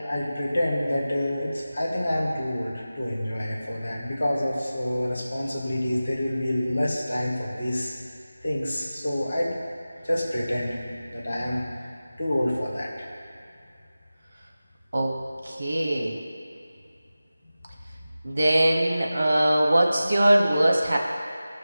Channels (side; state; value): both; inverted; correlation -0.96